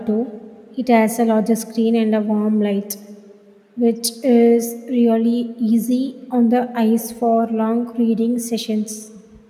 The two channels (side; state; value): both; identical; correlation 1.00